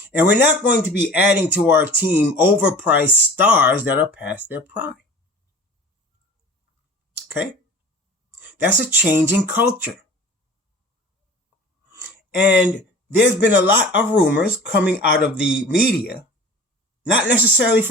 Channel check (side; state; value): both; normal; correlation 0.41